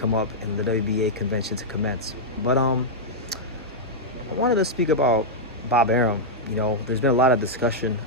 up and the WBA convention to commence. But I wanted to speak about Bob Arum. You know, there's been a lot of discussion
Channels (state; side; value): normal; both; correlation -0.05